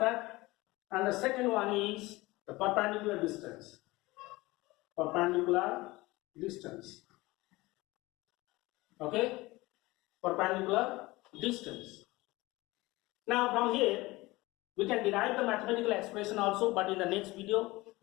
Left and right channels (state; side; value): quieter; right; 20.8 dB